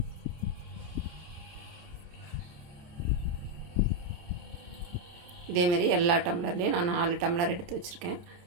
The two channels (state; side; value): late; left; 29 ms